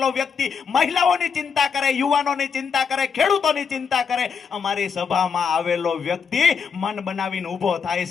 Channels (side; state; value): right; quieter; 6.3 dB